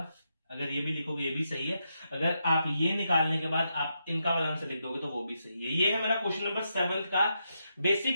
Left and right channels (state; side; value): inverted; both; correlation -0.83